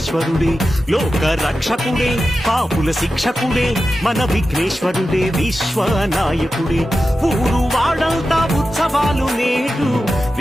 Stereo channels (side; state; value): both; normal; correlation 0.92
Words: లోక రక్షకుడే పాపుల శిక్షకుడే మన విఘ్నేశ్వరుడే విశ్వనాయకుడే ఊరు వాడంతా ఉత్సవాలు నేడు